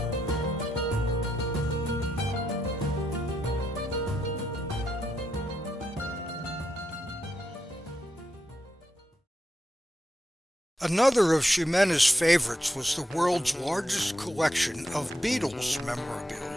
Another of Ximena's favorites was the world's largest collection of Beatles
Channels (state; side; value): normal; both; correlation 0.82